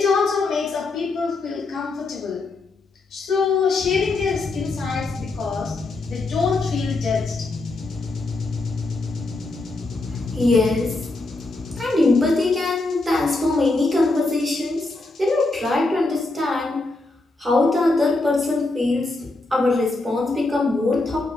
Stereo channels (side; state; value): right; quieter; 3.2 dB